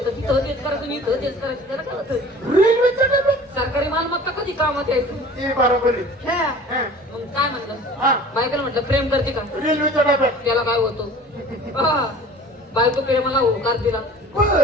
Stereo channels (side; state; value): both; normal; correlation 0.44